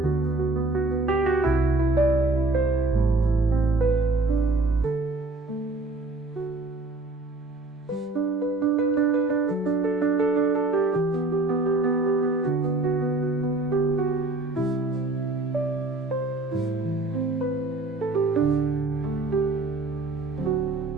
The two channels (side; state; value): left; quieter; 3.1 dB